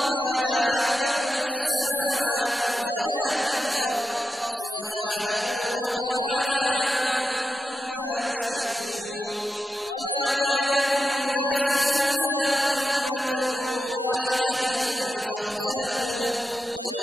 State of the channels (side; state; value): both; normal; correlation 0.89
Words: لا يعلم في السماوات ولا في الأرض سبحانه وتعالى عما يشركون وما كان الناس إلا أمة واحدة فاختلفوا